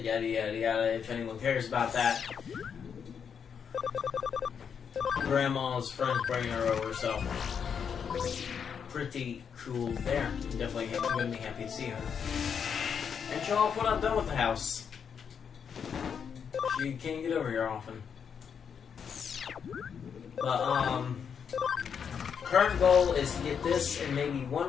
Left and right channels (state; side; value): quieter; right; 7.1 dB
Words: yada yada yada, if anyone cares about that. Grandma's friends bringing her over, so pretty cool there. Definitely gonna be happy to see her. And show off what I've done with the house. She can't get over here often. But, current goal is to get this and maybe one